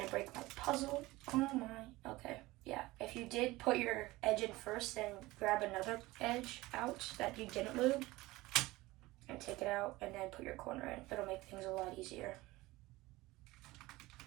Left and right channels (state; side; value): quieter; left; 19.6 dB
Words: break my puzzle. Oh my, okay, yeah. If you did put your edge in first, then grab another edge out that you didn't lube and take it out and then put your corner in. It'll make things a lot easier.